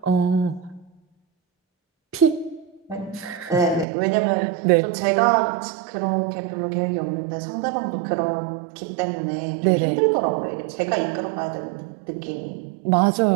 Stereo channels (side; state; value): left; drops out; at 3.9 s